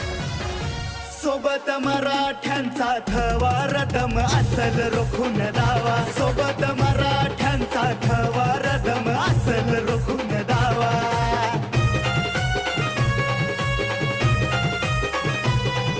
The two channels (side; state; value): both; identical; correlation 1.00